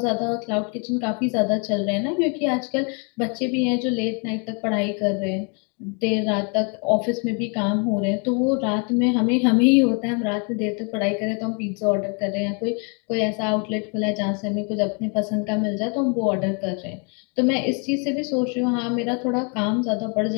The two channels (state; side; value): quieter; right; 36.7 dB